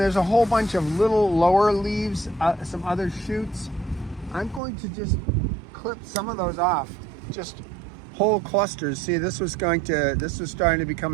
a whole bunch of little lower leaves, some other shoots. I'm going to just clip some of those off, just whole clusters. See, this was starting to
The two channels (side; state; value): left; drops out; at 4.6 s